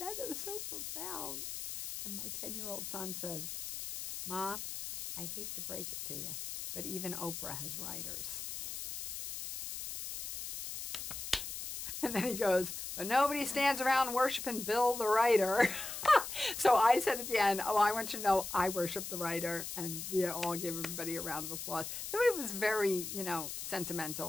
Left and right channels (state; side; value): noise; left; hiss, 7 dB below the sound